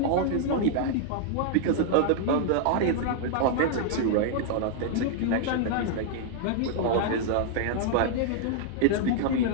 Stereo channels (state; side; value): different; both; correlation -0.01